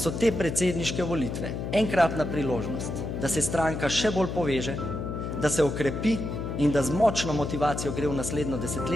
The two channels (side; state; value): left; noise; hum, 4 dB below the sound